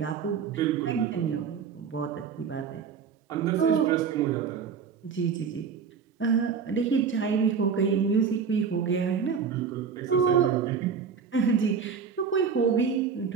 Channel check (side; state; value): left; quieter; 6.4 dB